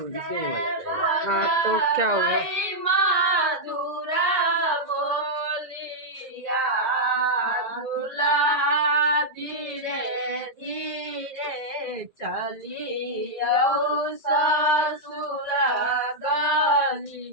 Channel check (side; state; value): left; late; 1.8 ms